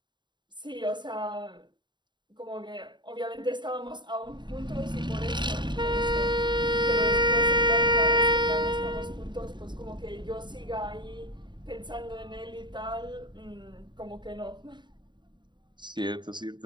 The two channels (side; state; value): left; late; 0.22 ms